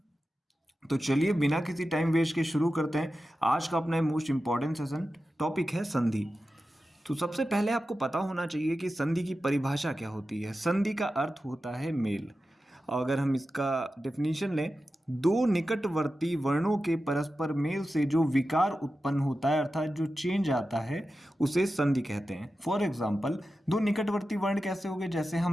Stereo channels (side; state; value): both; normal; correlation 0.92